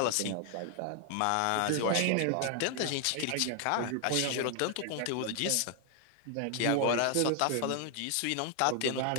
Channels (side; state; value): both; different; correlation 0.00